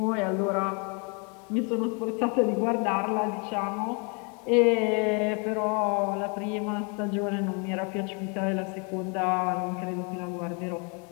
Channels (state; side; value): quieter; right; 35.1 dB